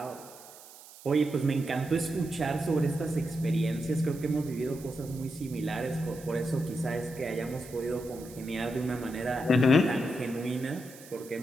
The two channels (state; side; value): noise; right; hiss, 19 dB below the sound